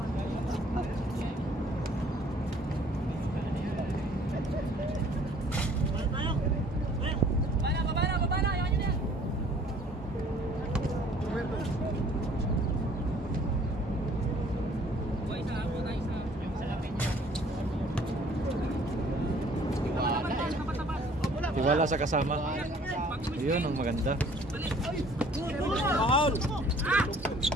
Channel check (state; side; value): normal; both; correlation 0.56